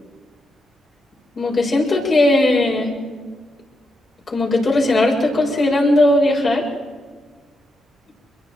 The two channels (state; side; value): normal; both; correlation 0.83